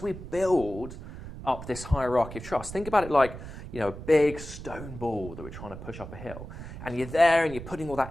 we build up this hierarchy of trust, think about it like a big stone ball that we're trying to push up a hill, and you're there and you're putting all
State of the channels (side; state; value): right; noise; rumble, 11 dB below the sound